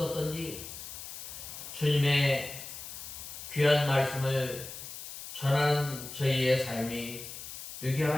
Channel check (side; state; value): left; noise; hiss, 11 dB below the sound